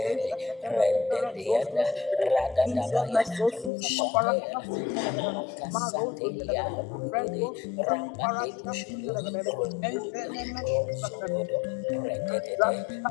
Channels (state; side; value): drops out; right; at 3.7 s